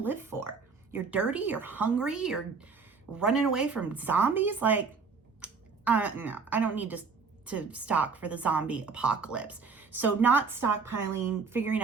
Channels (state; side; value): quieter; left; 5.0 dB